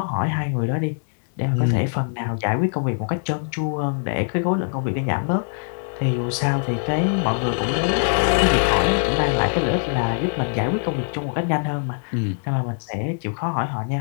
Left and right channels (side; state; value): right; silent; digital silence